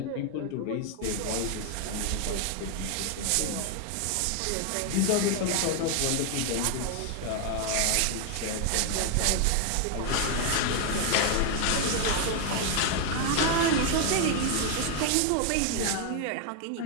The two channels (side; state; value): both; different; correlation 0.00